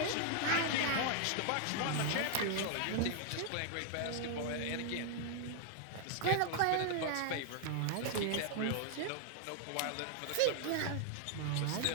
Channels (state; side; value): different; both; correlation 0.00